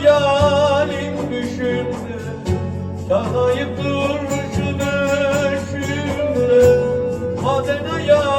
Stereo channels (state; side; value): identical; both; correlation 1.00